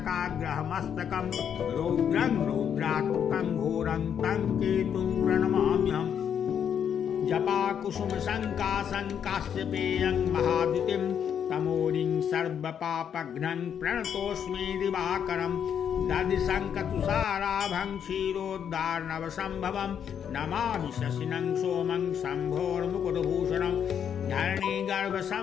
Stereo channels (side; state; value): right; quieter; 8.3 dB